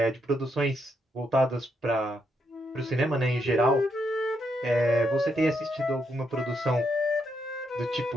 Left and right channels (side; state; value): both; normal; correlation 0.78